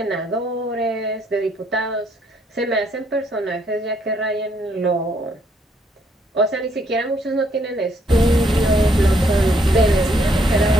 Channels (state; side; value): normal; both; correlation 0.70